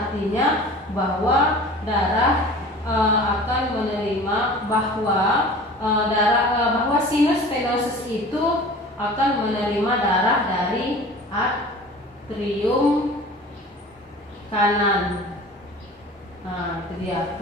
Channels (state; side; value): normal; both; correlation 0.41